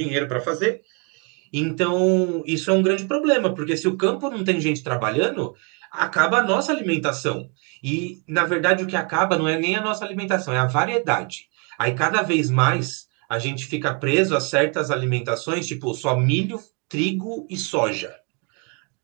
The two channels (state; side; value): quieter; left; 34.7 dB